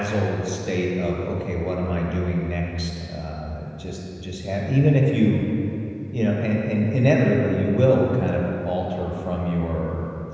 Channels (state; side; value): identical; both; correlation 1.00